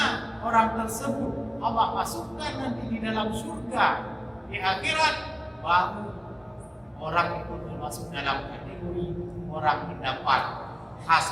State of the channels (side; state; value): both; identical; correlation 1.00